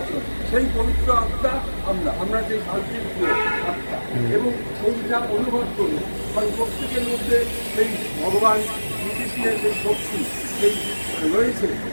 সেই পবিত্র আত্মা আমরা সেই শান্তির আত্মা এবং সেইটা অনুভব করি। কারণ প্রত্যেকের মধ্যে সেই ভগবান শ্রীকৃষ্ণের সেই শক্তি সেই রয়েছে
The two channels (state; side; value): inverted; both; correlation -1.00